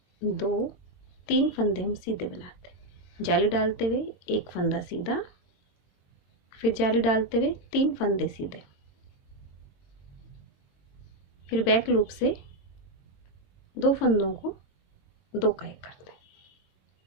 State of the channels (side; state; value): right; late; 22 ms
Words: 2 3 फंदे हम सीधे बनाते हैं, जाली डालते हुए एक फंदा सीधा, फिर जाली डालते हुए 3 फंदे सीधे, फिर बैक लूप से 2 फंदों को 2 का 1 करते हैं।